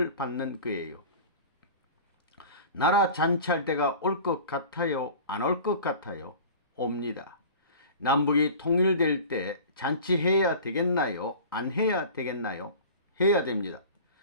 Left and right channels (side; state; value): both; inverted; correlation -0.39